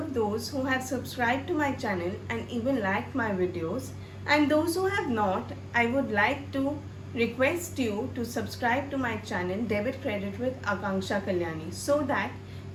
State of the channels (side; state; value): both; identical; correlation 1.00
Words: those who have subscribed to my channel and even liked my videos, and those who have not, I would like to request you to subscribe to my channel Debit Credit with Akanksha Kalyani so that